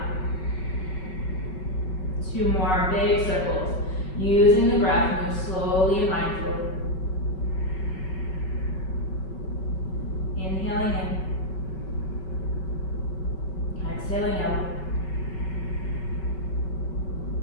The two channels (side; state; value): right; late; 5.3 ms